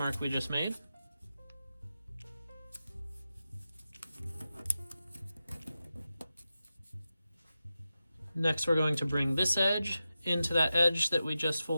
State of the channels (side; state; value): both; inverted; correlation -0.92